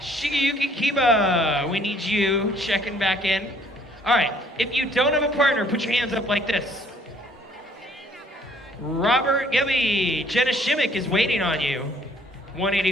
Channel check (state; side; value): normal; both; correlation 0.61